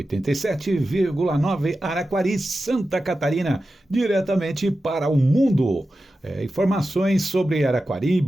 Araquari, Santa Catarina, diretamente para o mundo. Informações sobre Araquari,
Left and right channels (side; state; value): both; normal; correlation 0.92